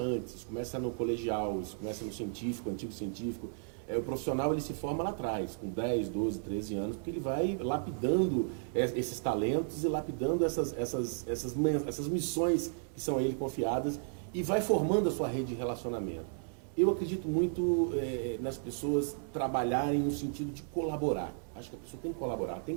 isso começa no colegial, isso começa no científico, antigo científico. O profissional ele se forma lá atrás, com 10, 12, 13 anos, porque ele vai lapidando esses talentos e lapidando essas missões que são a ele confiadas e vai formando a sua rede de relacionamento. Eu acredito muito nas pessoas trabalharem no sentido de colaborar. Acho que a pessoa tem que colaborar, tem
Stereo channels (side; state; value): left; silent; 55 dB below the other